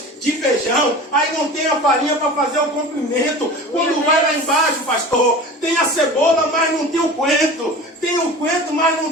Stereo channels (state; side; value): normal; both; correlation 0.36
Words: de feijão, aí não tem a farinha para fazer o comprimento. Quando vai lá embaixo, pastor, tem a cebola, mas não tem o coentro. Tem o coentro, mas não